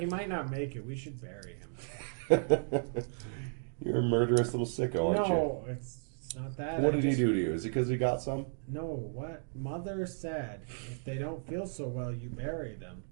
might not make it. We should bury him. You're a murderous little sicko, aren't you? No, it's not that. What I did he just- do to you? Is it because he got some? No, what Mother said. If they don't feel so well, you bury them.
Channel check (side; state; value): left; silent; digital silence